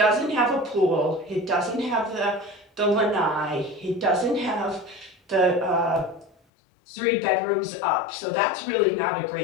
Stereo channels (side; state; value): right; drops out; at 6.4 s